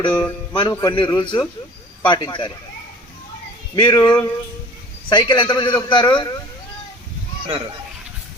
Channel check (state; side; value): normal; both; correlation 0.45